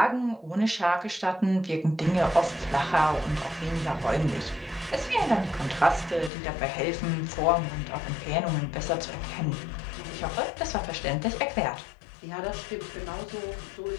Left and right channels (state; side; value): drops out; right; at 6.3 s